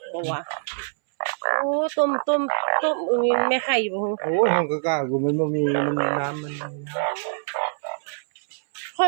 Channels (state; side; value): silent; left; 62 dB below the other